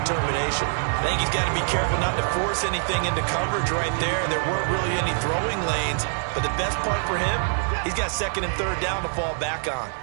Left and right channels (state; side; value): silent; left; 62 dB below the other